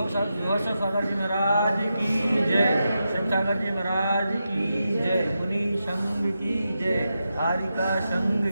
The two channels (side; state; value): both; inverted; correlation -0.87